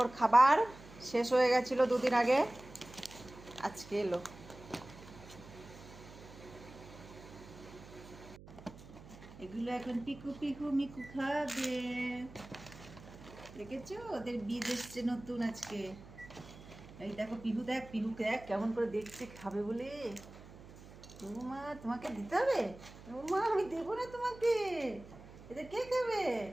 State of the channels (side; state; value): right; noise; hum, 18 dB below the sound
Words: খাবার শেষ হয়ে গেছিলো দুদিন আগে, আজকে এলো। এগুলো এখন পিকু পিকু মিকু খাবে। দেখেছো ওদের বীজ এসছে নতুন আজকে। এই দেখো পিহু দেখ কেমন করে দেখছে খাবে বলে। মা তোমাকে দিতে হবে? মা আমি দেবো না তোমাকে, এদের কে খাবে?